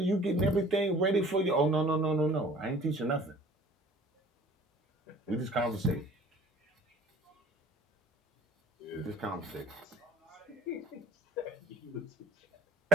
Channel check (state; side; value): normal; both; correlation 0.49